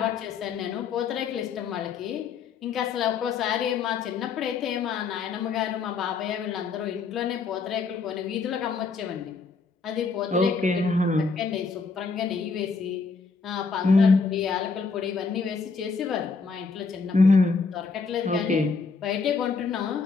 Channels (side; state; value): right; quieter; 4.8 dB